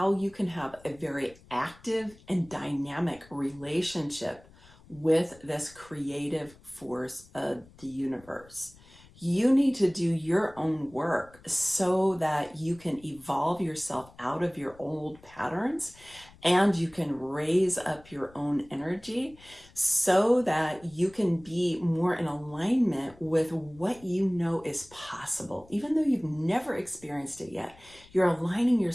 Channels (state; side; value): noise; left; rumble, 25 dB below the sound